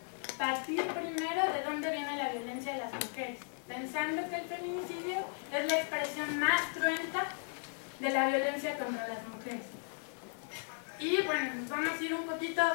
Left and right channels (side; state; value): right; silent; 54 dB below the other